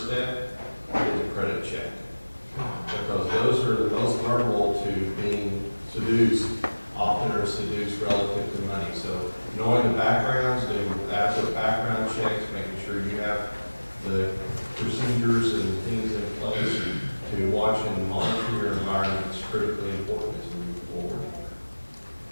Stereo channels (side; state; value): both; inverted; correlation -1.00